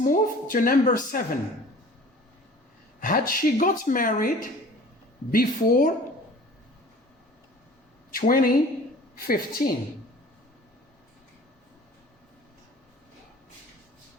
to number 7. Had she got married before 2015?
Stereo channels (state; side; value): normal; both; correlation 0.45